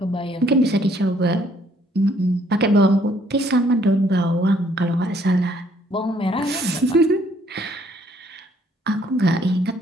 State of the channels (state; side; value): normal; both; correlation 0.65